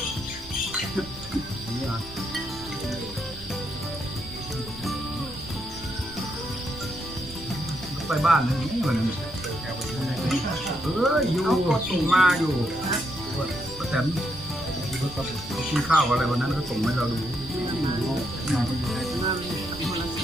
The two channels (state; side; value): noise; right; rumble, 16 dB below the sound